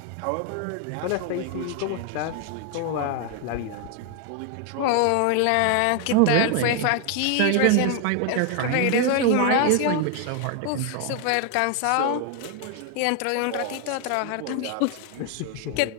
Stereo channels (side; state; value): both; different; correlation 0.00